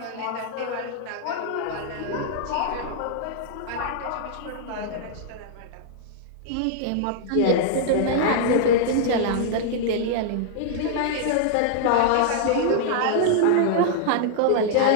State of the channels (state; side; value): different; both; correlation -0.01